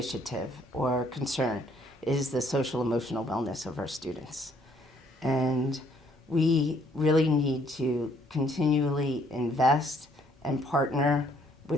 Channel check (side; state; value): both; normal; correlation 0.65